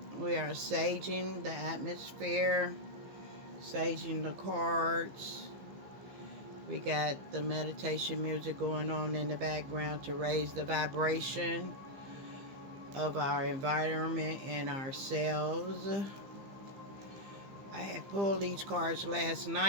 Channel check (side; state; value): left; late; 15 ms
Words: We are saging the atmosphere, saging the cards. We got the meditation music going on in the background to raise the vibration of our environment and ourselves. I had pulled these cards last